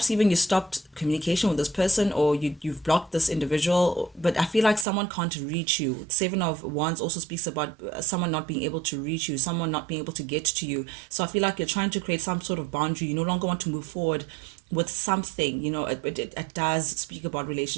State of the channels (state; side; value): drops out; left; at 4.9 s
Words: even you stopped communication with this person, or you've blocked this individual, but I feel like someone can't reach you. Seven of Wands also speaks about someone not being able to reach you, someone not being able to get to you. So I feel like you're trying to create some sort of boundary. You no longer want to move forward with something. It does speak about